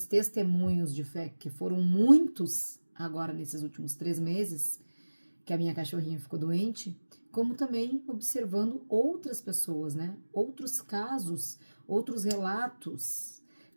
testemunhos de fé, que foram muitos agora nesses últimos 3 meses, que a minha cachorrinha ficou doente, como também observando outras pessoas, né, outros casos, outros relatos,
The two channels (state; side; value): inverted; both; correlation -1.00